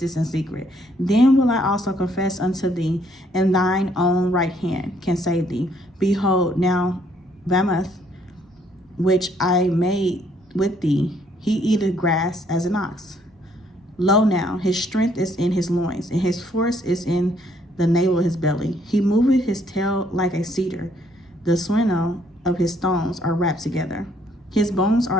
in secret. Then will I also confess unto thee, and thine own right hand can save thee. Behold, now Bamoth, which I made with thee, he eateth grass as an ox. Lo now, his strength is in his loins, and his force is in the navel of his belly. He moveth his tail like a cedar. The swinnow of his stones are wrapped together. His bones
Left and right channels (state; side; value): normal; both; correlation 0.67